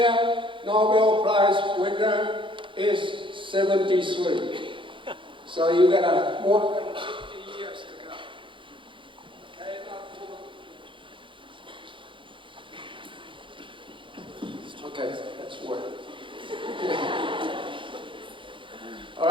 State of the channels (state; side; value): late; left; 0.24 ms